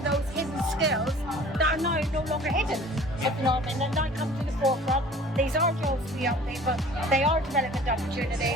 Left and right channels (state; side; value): normal; both; correlation 0.47